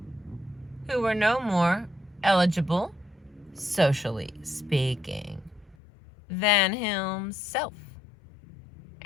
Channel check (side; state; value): right; drops out; at 5.8 s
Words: who were no more eligible, socially speaking, than himself.